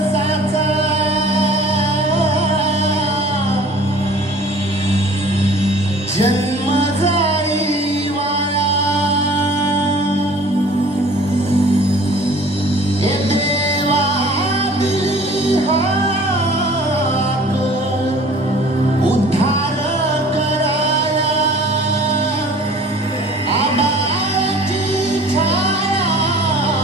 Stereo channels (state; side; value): normal; both; correlation 0.48